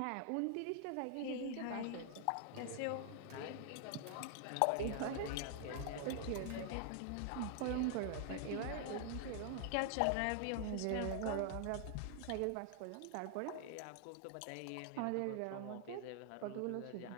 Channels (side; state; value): both; different; correlation 0.00